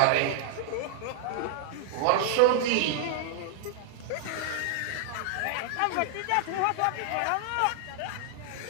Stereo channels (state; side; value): different; both; correlation -0.01